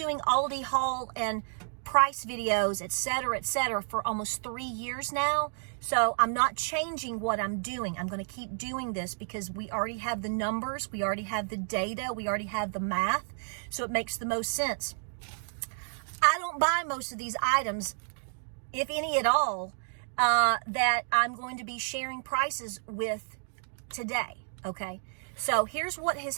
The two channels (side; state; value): left; silent; digital silence